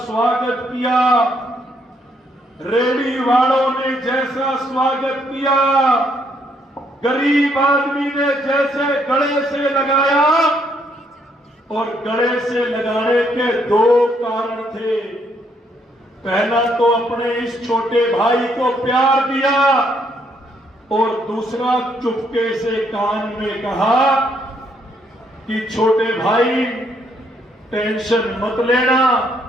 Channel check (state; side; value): normal; both; correlation 0.71